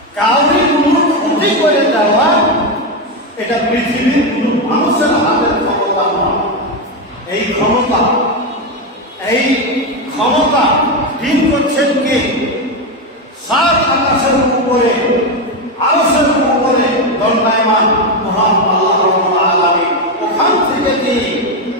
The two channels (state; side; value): normal; both; correlation 0.09